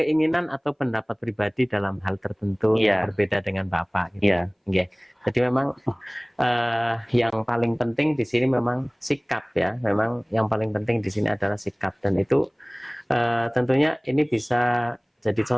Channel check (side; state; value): both; identical; correlation 1.00